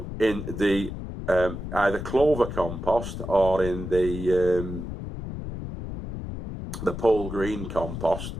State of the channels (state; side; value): noise; left; rumble, 7 dB below the sound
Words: the either clover compost or in the Pole Green compost,